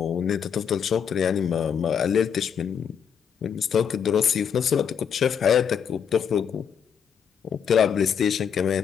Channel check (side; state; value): right; quieter; 7.6 dB